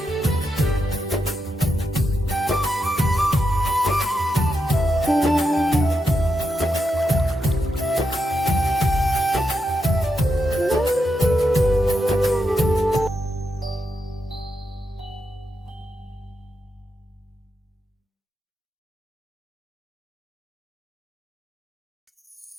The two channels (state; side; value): normal; both; correlation 0.85